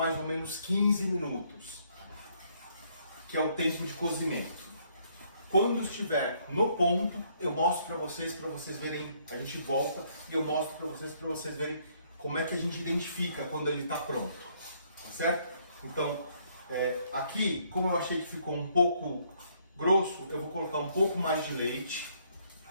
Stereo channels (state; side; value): inverted; both; correlation -0.68